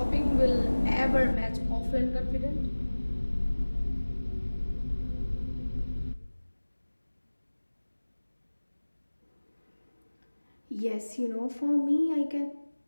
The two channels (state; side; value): inverted; both; correlation -1.00